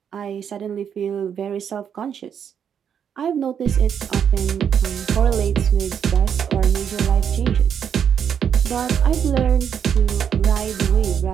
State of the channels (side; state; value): left; quieter; 8.0 dB